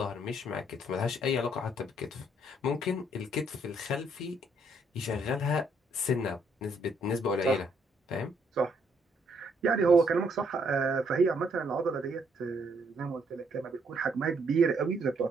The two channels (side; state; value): both; normal; correlation 0.70